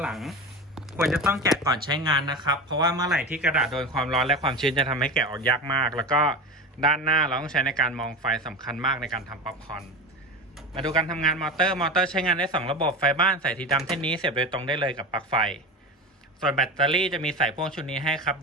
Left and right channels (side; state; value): both; normal; correlation 0.26